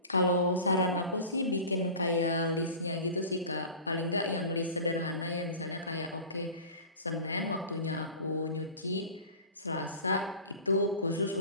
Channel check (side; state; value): both; inverted; correlation -0.36